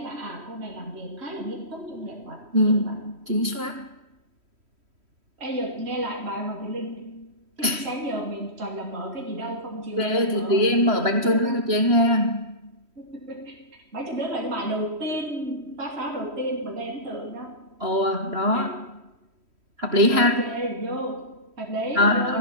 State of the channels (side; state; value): left; late; 3.1 ms